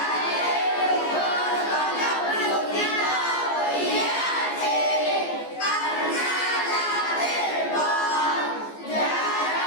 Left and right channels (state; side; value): late; right; 14 ms